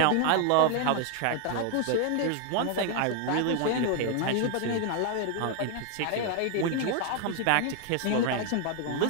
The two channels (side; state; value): both; different; correlation 0.01